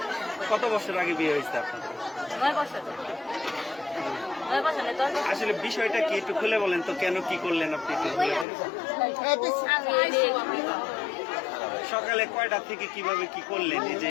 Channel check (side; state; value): right; drops out; at 8.5 s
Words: কত বছর আগে বিয়ে হয়েছে আপনাদের? 9 বছর। 9 বছর নেই 10 বছর। আসলে বিষয়টা কি একটু খুলে বলেন তো, কেন কি করলেন আপনি একটু খুলে বলেন। আমি এই যে সকালে কয়টা থেকে কিভাবে কি করলেন, এই যে